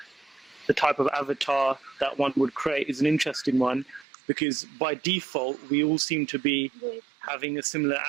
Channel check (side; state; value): left; drops out; at 4.0 s